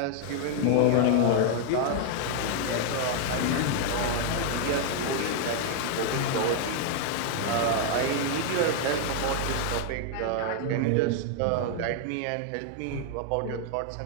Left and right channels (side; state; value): both; different; correlation 0.00